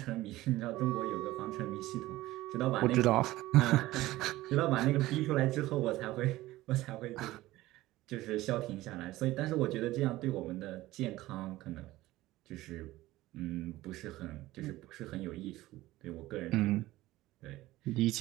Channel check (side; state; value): left; quieter; 17.2 dB